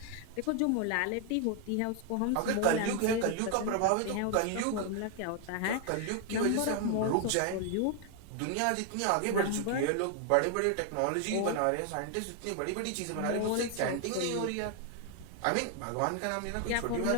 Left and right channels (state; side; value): different; both; correlation 0.01